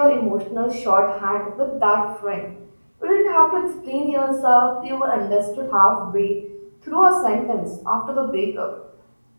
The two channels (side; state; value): both; inverted; correlation -1.00